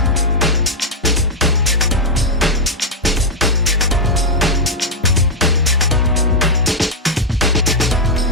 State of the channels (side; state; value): both; normal; correlation -0.01